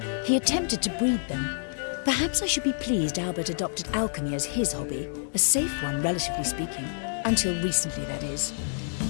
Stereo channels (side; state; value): right; silent; digital silence